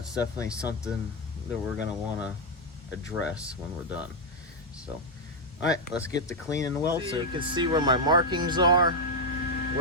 definitely something that we're gonna wanna address when we're done. So, all right, let's get to cleaning the weld so you can see where my markings are,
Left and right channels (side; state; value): both; normal; correlation 0.01